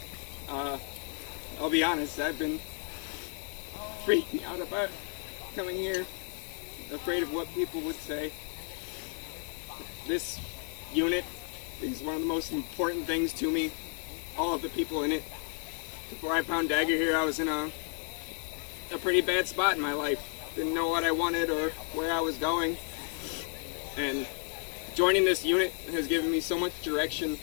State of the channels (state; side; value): quieter; right; 39.6 dB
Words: I'll be honest. I've been freaking out about coming here, afraid of what people would say. This unit is one of the most important things to me. All of the people in it. Before I found Dagger here, I was in a pretty bad spot in my life. Didn't know what I wanted or where I was going. And joining this unit has given me so much direction,